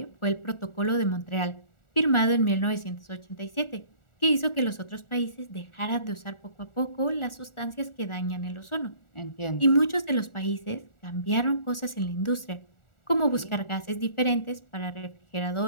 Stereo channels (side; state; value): right; late; 1.4 ms